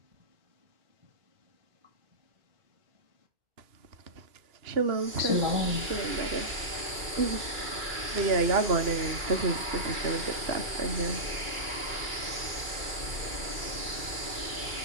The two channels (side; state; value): left; late; 2.3 ms